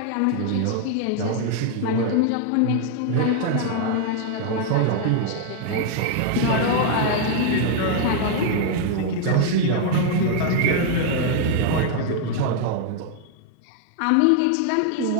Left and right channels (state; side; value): different; both; correlation 0.00